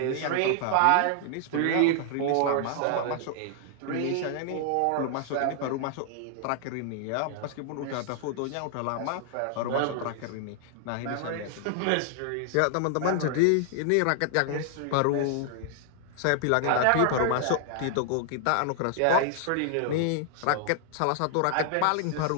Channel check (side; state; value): both; different; correlation 0.00